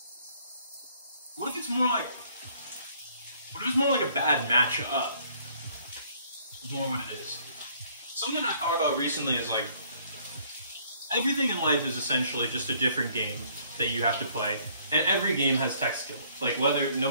what if it's more like a bad match-up? Is more what it is. Something I thought about recently is like, everything in life is essentially just a different game that you have to play, and every game has tech skill. Like no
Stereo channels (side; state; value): both; inverted; correlation -0.62